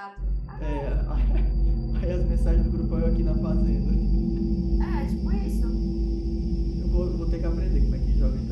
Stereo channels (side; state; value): both; identical; correlation 1.00